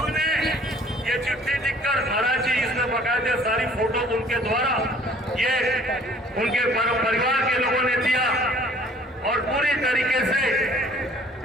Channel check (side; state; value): both; normal; correlation 0.55